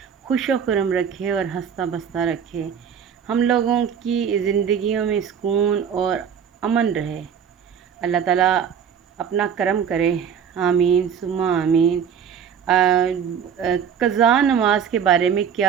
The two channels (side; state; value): left; quieter; 7.7 dB